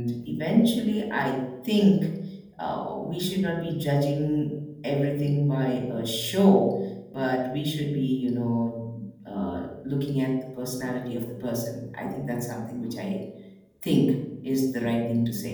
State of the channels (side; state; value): both; identical; correlation 1.00